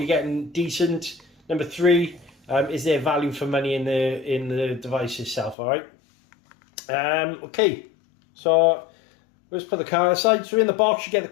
getting decent? Number three, is there value for money in the device itself? All right. Okay, so let's put the car aside. So in the box you get the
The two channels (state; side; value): drops out; right; at 5.6 s